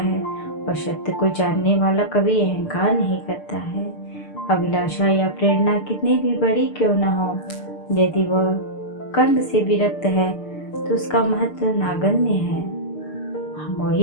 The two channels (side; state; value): right; late; 6.7 ms